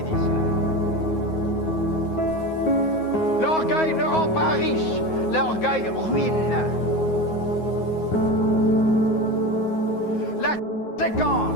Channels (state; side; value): late; right; 9.4 ms